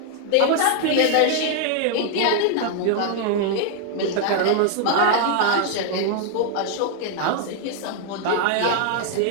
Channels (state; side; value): different; both; correlation 0.00